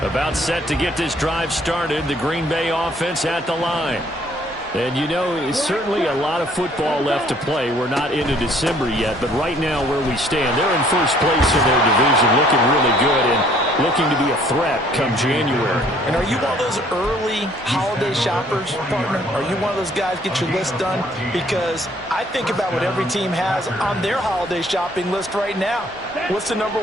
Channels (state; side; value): normal; both; correlation 0.60